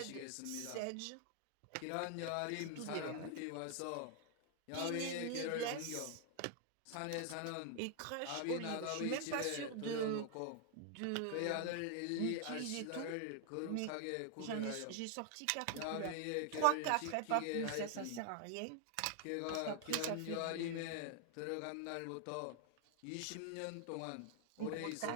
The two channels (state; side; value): different; both; correlation 0.00